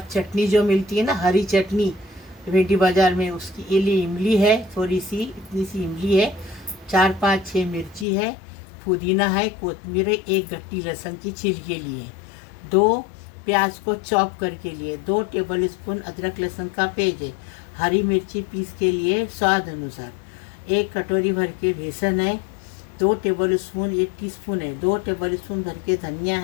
चटनी जो मिलती है ना, हरी चटनी भेंडी बाज़ार में, उसकी ये लिए इमली है, थोड़ी सी इतनी सी इमली है, 4-5-6 मिर्ची है, पुदीना है, कोतमीर है, एक गट्टी लहसुन की छील के लिए, 2 प्याज को चॉप करके लिए, 2 टेबल स्पून अदरक लहसुन का पेस्ट है, हरी मिर्ची पीस के लिए स्वाद अनुसार, 1 कटोरी भर के बेसन है, 2 टेबल स्पून, 1 टीस्पून है, 2 टेबल स्पून भर के धनिया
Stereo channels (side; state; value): right; drops out; at 8.1 s